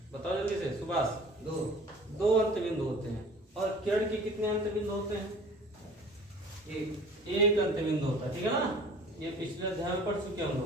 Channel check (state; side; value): normal; both; correlation 0.46